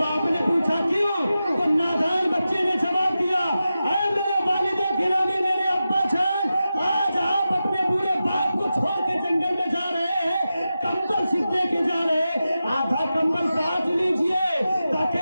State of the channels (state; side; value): inverted; both; correlation -0.92